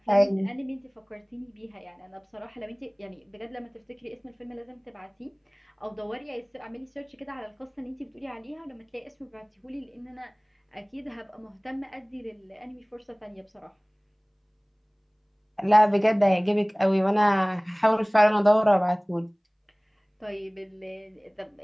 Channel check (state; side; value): identical; both; correlation 1.00